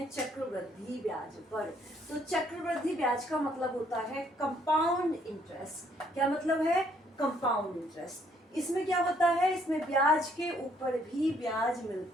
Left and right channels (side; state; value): both; normal; correlation 0.67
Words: चक्रवृद्धि ब्याज पर। तो चक्रवृद्धि ब्याज का मतलब होता है कंपाउंड इंटरेस्ट। क्या मतलब है? Compound interest. इसमें क्या होता है? इसमें ब्याज के ऊपर भी ब्याज